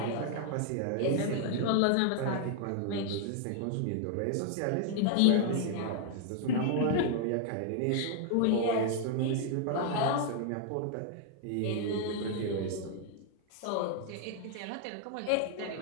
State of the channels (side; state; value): both; different; correlation 0.00